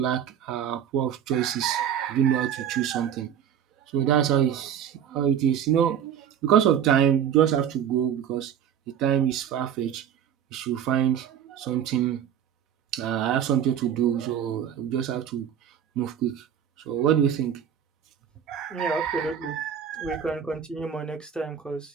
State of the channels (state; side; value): quieter; left; 9.1 dB